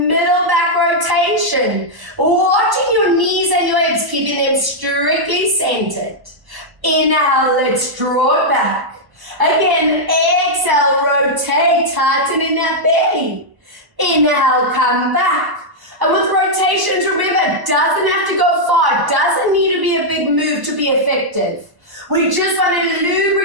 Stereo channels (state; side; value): late; left; 1.4 ms